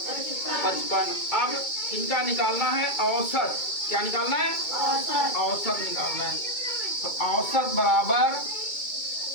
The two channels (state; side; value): late; right; 2.2 ms